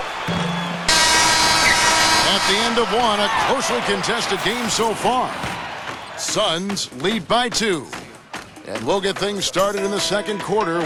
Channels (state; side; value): identical; both; correlation 1.00